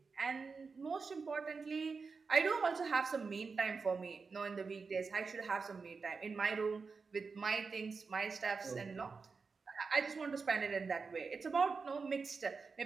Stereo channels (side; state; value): left; quieter; 4.8 dB